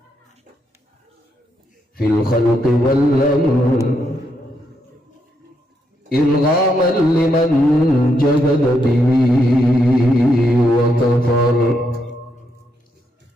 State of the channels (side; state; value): both; normal; correlation 0.79